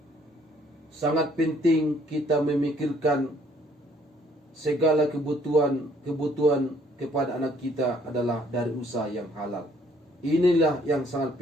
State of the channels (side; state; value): both; normal; correlation 0.63